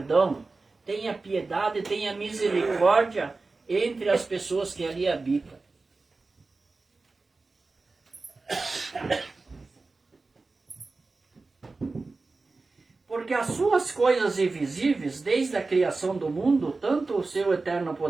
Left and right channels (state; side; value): quieter; left; 3.7 dB